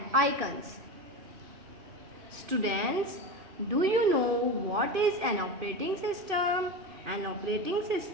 icons. Students, do you know what is an operating system? An operating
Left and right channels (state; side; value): late; left; 2.5 ms